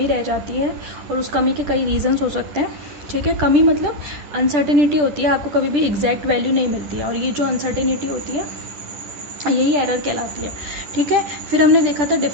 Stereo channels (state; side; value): late; left; 10 ms